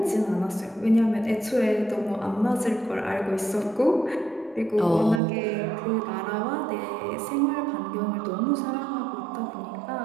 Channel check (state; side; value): drops out; left; at 5.2 s